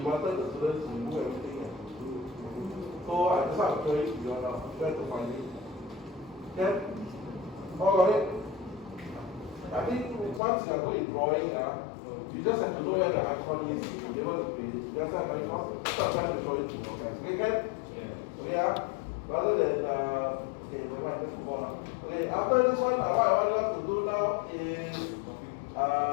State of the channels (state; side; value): drops out; right; at 10.4 s